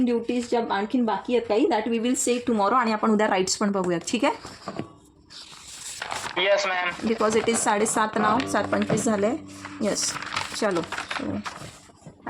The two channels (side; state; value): both; identical; correlation 1.00